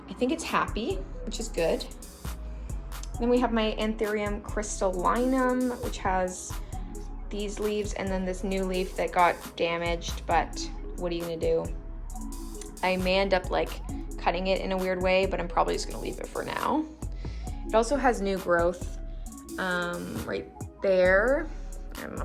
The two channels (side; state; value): both; identical; correlation 1.00